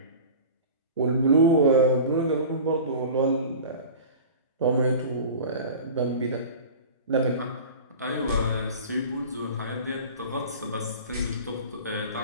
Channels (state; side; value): inverted; both; correlation -0.37